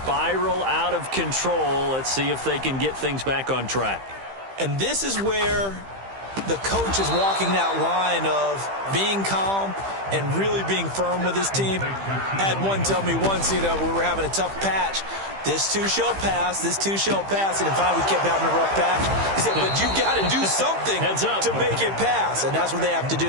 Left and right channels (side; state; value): left; late; 15 ms